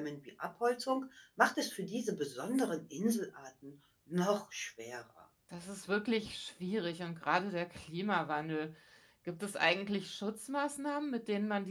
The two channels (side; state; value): both; identical; correlation 1.00